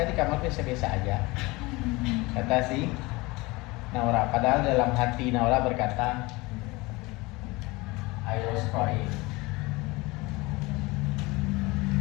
di kamar biasa-biasa aja. Kata si Naura. Padahal dalam hati Naura berkata, I was crying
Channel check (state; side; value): quieter; right; 23.0 dB